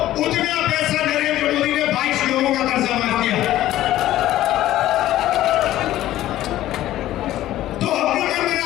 उतना पैसा नरेंद्र मोदी ने 22 लोगों का कर्जा माफ किया। तो हमने मन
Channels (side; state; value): right; quieter; 14.2 dB